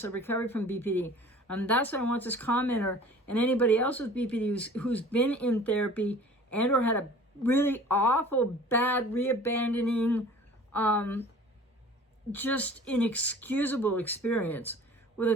of recovery from BPD. And that's why I want this commenter and anybody else with BPD who's been in therapy and or had a really awful, bad, re-abandoning, just inexcusable experience with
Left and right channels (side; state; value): both; normal; correlation 0.46